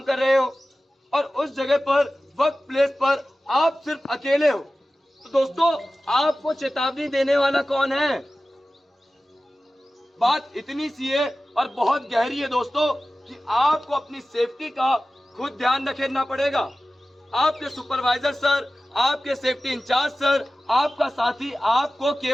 कर रहे हो और उस जगह पर वर्क प्लेस पर आप सिर्फ अकेले हो, तो दोस्तों आपको चेतावनी देने वाला कौन है? बात इतनी सी है और बहुत गहरी है दोस्तों कि आपको अपनी सेफ्टी का खुद ध्यान रखना पड़ेगा। आपके सुपरवाइजर सर, आपके सेफ्टी इंचार्ज सर, आपका साथी आपको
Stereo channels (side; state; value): both; normal; correlation 0.96